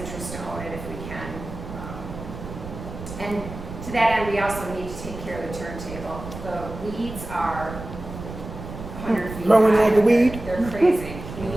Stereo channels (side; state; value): right; noise; rumble, 11 dB below the sound